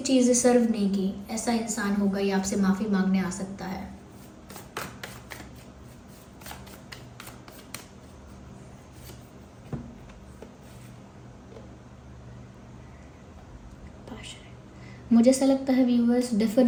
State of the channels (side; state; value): both; identical; correlation 1.00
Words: चीज़ें सर्व नहीं की, ऐसा इंसान होगा, ये आपसे माफ़ी मांगने आ सकता है। मुझे ऐसा लगता है व्यूअर्स,